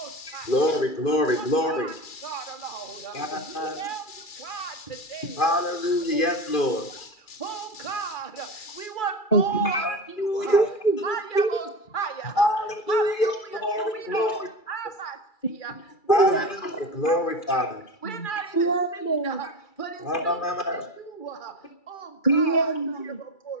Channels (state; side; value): late; right; 2.3 ms